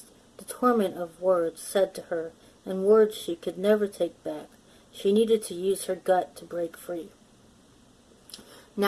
the torment of words said to her, and words she could never take back. She needed to use her gut to break free.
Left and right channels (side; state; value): both; identical; correlation 1.00